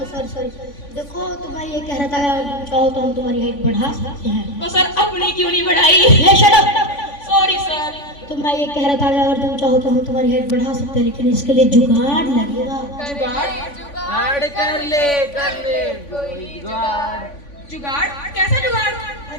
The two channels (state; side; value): late; right; 3.5 ms